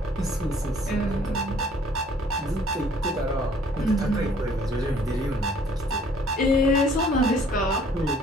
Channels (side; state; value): both; normal; correlation 0.58